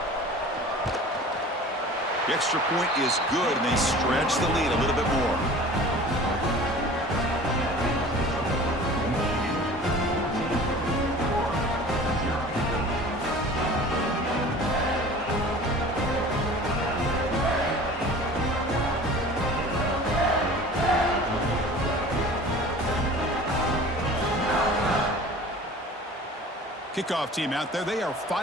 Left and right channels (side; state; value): both; normal; correlation 0.42